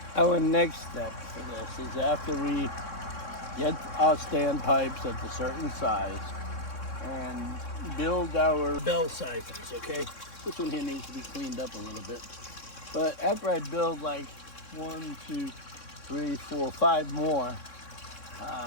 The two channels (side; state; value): right; late; 3.6 ms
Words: Our next step for this is after we get our standpipes at a certain size and build our bell siphons, okay? This one here needs to be cleaned up a little bit. But after I build like 1, 2, 3, 4, 5 more,